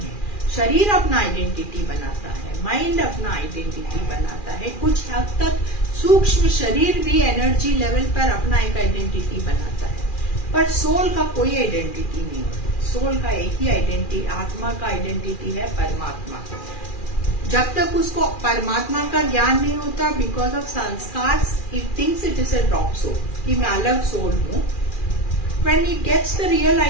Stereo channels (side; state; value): right; late; 2.4 ms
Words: शरीर अपना आइडेंटिटी बनाता है, माइंड अपना आइडेंटिटी बनाता है. कुछ हद तक सूक्ष्म शरीर भी एनर्जी लेवल पर अपना एक आइडेंटिटी बनाता है, पर सोल का कोई आइडेंटिटी नहीं होता. सोल का एक ही आइडेंटिटी, आत्मा का आइडेंटिटी है परमात्मा. जब तक उसको परमात्मा का ज्ञान नहीं होता, because of sanskar, it thinks it is a drop soul, कि मैं अलग सोल हूँ. When it gets the real